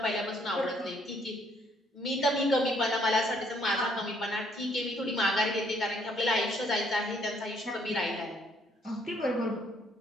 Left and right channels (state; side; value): normal; both; correlation 0.67